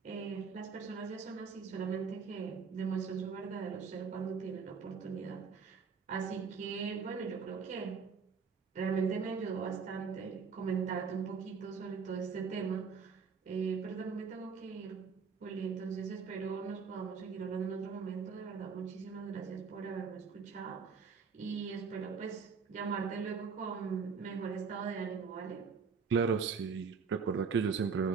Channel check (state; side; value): quieter; left; 5.6 dB